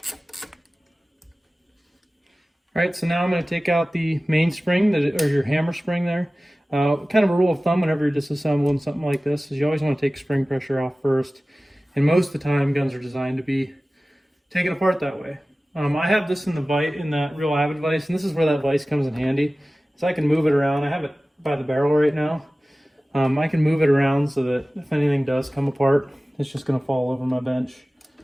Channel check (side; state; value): both; normal; correlation 0.97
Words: Alright, so now I'm going to take out the main spring, or your hammer spring there. Kind of a rule of thumb whenever you're disassembling something like this is you always want to take spring pressure off first. And most of the time guns are designed to be taken apart that way. I have this in that Real Avid vise, and this is where that vise comes in handy. So I can move it around. I have it by the barrel right now. I can move it around so that if anything does come apart, it's just going to fall over my bench.